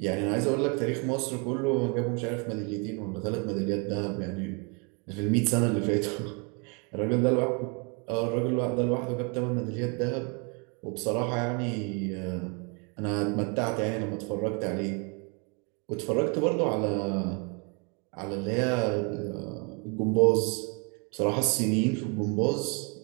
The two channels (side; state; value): left; quieter; 34.2 dB